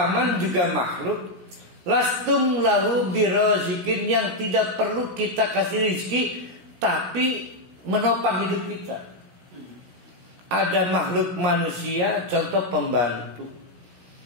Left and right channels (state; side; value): late; left; 17 ms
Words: juga makhluk. Lastum lahu birazikin, yang tidak perlu kita kasih rezeki, tapi menopang hidup kita. Ada makhluk manusia, contoh pembantu,